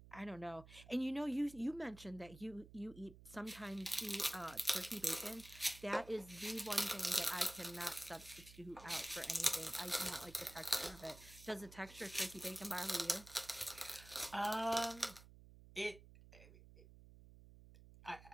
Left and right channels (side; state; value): right; noise; hum, 18 dB below the sound